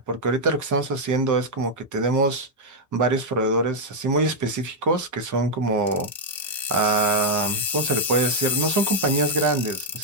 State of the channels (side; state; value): both; normal; correlation -0.02